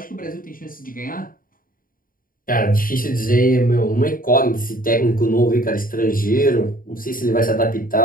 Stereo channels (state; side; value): late; right; 0.41 ms